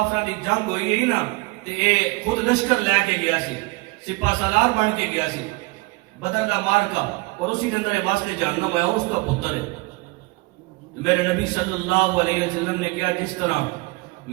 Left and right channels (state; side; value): quieter; left; 24.7 dB